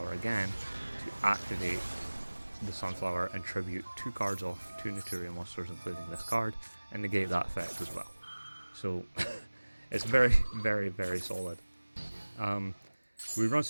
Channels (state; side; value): inverted; both; correlation -1.00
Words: again to activate the Sunflower and tribute 2 cards off 2 Naturia monsters, including this card, and negate that effect as well. So it's very, very, very solid. We run